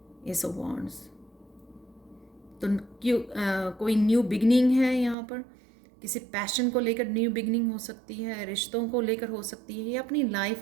एस ऑफ वॉन्ड्स, तो कोई न्यू बिगनिंग है यहाँ पर। किसी पैशन को लेकर न्यू बिगनिंग हो सकती है, रिश्तों को लेकर हो सकती है, या अपनी लाइफ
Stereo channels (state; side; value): drops out; left; at 5.2 s